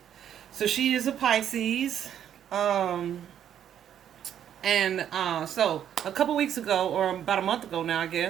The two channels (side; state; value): left; quieter; 9.8 dB